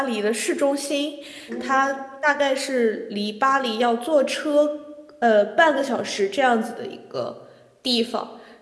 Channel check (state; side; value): identical; both; correlation 1.00